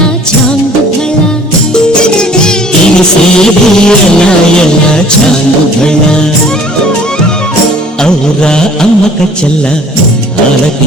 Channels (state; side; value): normal; both; correlation 0.52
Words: చాంగుఫళ తెలిసేది ఎలా ఎలా చాంగుఫళ ఔరా అమ్మక చెల్ల